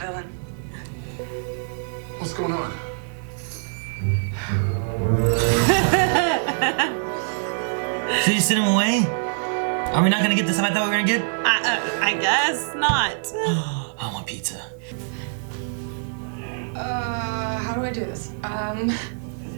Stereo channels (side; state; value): left; silent; 55 dB below the other